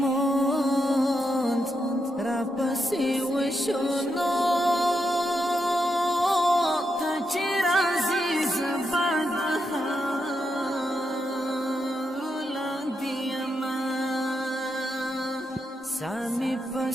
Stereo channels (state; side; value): normal; both; correlation 0.83